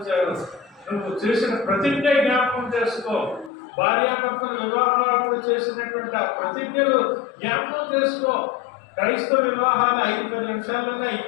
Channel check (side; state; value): right; drops out; at 3.5 s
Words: నువ్వు చేసిన ప్రతిజ్ఞ జ్ఞాపకం చేసుకో. భార్యాభర్తల వివాహాలు చేసినటువంటి ఆ ప్రతిజ్ఞలు జ్ఞాపకం చేసుకో. క్రైస్తవ వివాహాలు 5-10 నిమిషాల్లోనే